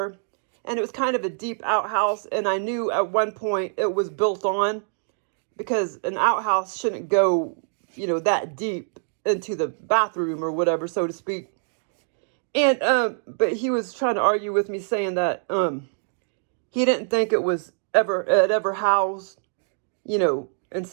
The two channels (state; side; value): silent; left; digital silence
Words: and it was kind of a deep outhouse, and I knew at one point it was built on, because an outhouse shouldn't go, that deep into the bathroom or whatever, so to speak. And but he was trying to argue with me, saying that he didn't think it ever housed,